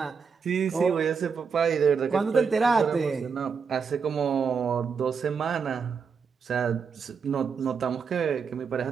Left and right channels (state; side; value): quieter; left; 5.9 dB